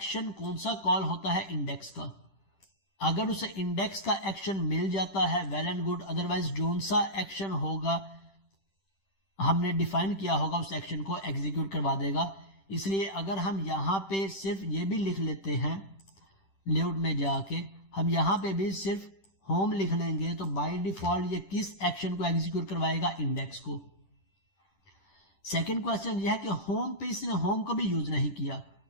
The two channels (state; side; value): late; right; 10 ms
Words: कौन सा कॉल होता है? इंडेक्स का। अगर उसे इंडेक्स का एक्शन मिल जाता है well and good, otherwise zone सा एक्शन होगा हमने डिफाइन किया होगा उस एक्शन को एग्जीक्यूट करवा देगा। इसलिए अगर हम यहाँ पे सिर्फ ये भी लिख लेते हैं, लेआउट में जाके हम यहाँ पे भी सिर्फ होम लिख लेंगे तो बाय डिफॉल्ट ये किस एक्शन को एग्जीक्यूट करवाएगा? इंडेक्स को। सेकंड क्वेश्चन यह है कि होम पे इसने होम को भी यूज नहीं किया।